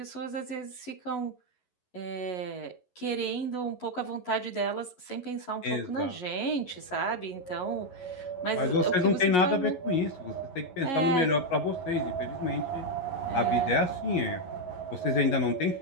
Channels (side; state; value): right; late; 11 ms